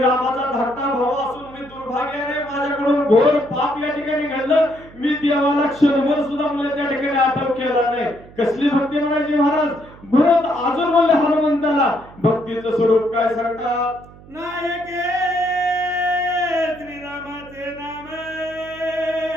रामाचा धाकटा भाऊ असून मी दुर्भाग्याने माझ्याकडून घोर पाप या ठिकाणी घडलं. मी देवाला क्षणभर सुद्धा म्हणजे त्या ठिकाणी आठव केला नाही. कसली भक्ती म्हणायची महाराज. भरत अजून म्हणले हनुमंताला भक्तीचं स्वरूप काय सांगतात. नायके श्रीरामाचे नाम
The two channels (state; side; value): noise; right; hum, 21 dB below the sound